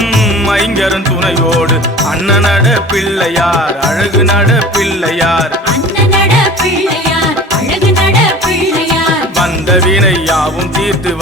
ஐங்கரன் துணையோடு. அண்ணனட பிள்ளையார் அழகு நட பிள்ளையார், அண்ணனட பிள்ளையார் அழகு நட பிள்ளையார். வந்த வினை யாவும் தீர்த்து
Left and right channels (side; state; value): both; normal; correlation 0.40